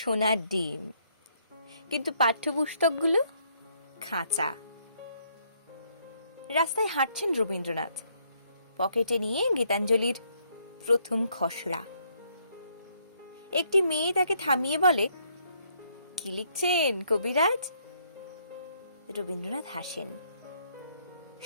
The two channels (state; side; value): inverted; both; correlation -0.70